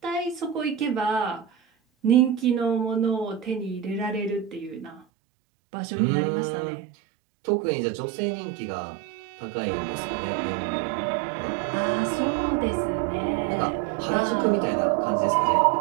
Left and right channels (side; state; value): left; drops out; at 5.1 s